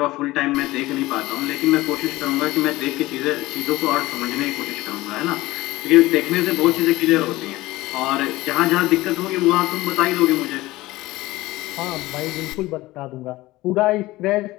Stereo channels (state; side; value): quieter; right; 18.6 dB